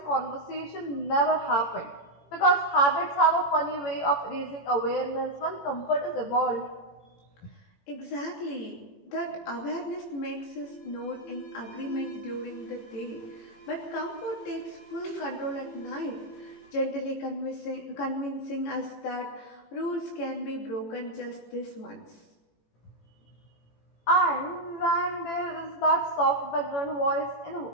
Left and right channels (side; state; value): right; late; 18 ms